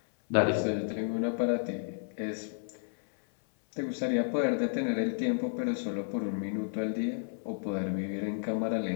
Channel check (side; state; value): right; silent; 57 dB below the other